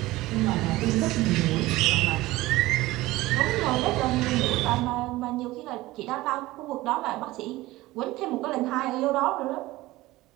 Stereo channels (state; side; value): quieter; left; 18.4 dB